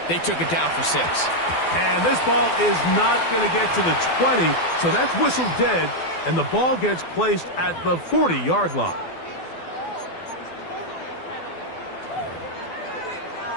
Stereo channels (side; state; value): right; late; 12 ms